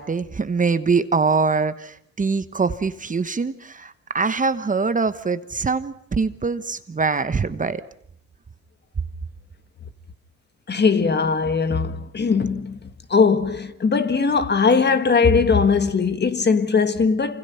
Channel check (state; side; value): normal; both; correlation 0.34